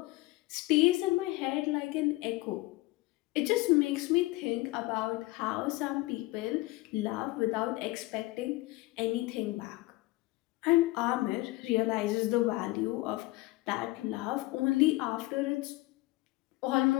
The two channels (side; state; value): right; quieter; 20.4 dB